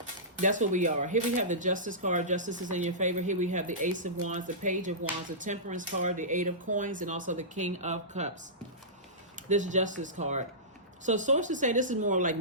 that's what we are. Here we have the Justice card. Justice is in your favor. Here we have the Ace of Wands, the Page of Wands, the Temperance card, the Eight of Coins, and also the King of Cups. This Justice card. So sources say this is more like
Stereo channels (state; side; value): normal; both; correlation -0.19